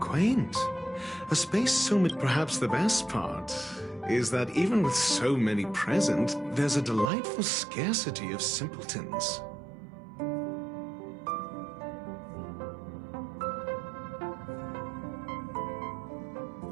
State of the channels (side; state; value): left; drops out; at 7.1 s